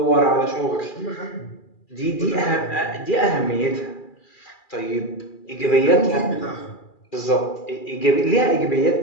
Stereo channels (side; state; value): right; late; 2.4 ms